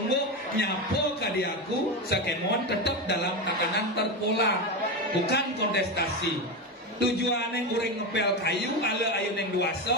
nyapo kadiaku sakemon tetap dalam tatanan terpola. Bukan kontestasi. tujuannya ureng ngepel kayu ala ayu neng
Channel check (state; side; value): normal; both; correlation 0.16